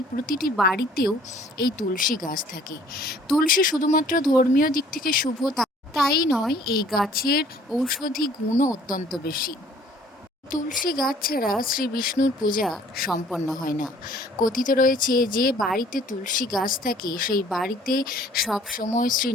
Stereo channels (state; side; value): normal; both; correlation 0.56